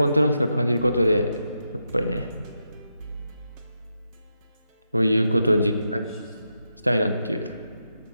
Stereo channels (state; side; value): inverted; both; correlation -0.84